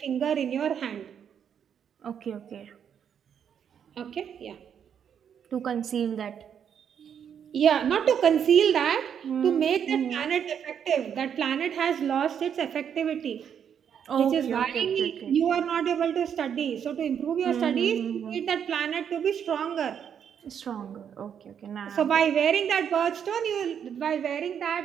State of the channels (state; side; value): quieter; left; 8.2 dB